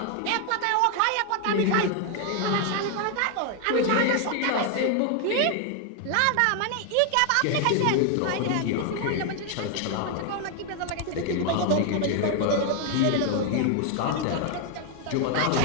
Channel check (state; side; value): different; both; correlation 0.00